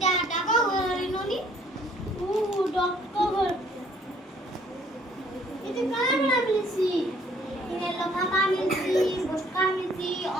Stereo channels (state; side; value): normal; both; correlation 0.62